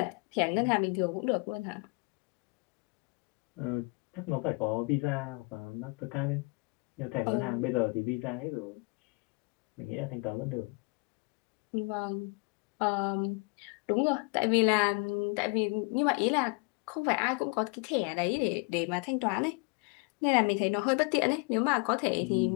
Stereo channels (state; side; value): quieter; right; 29.8 dB